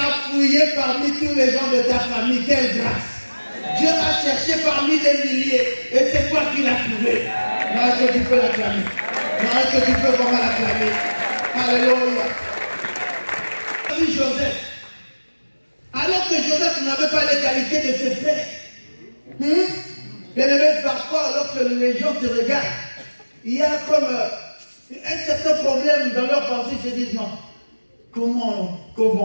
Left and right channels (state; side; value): inverted; both; correlation -1.00